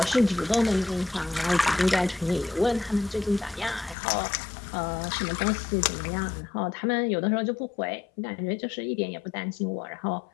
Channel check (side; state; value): right; drops out; at 4.0 s